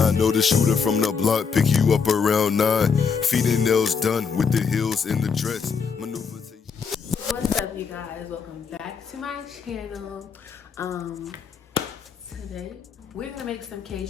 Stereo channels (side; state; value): right; quieter; 5.9 dB